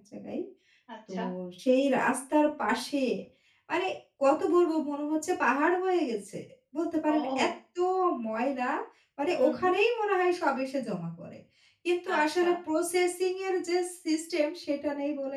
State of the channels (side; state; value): both; identical; correlation 1.00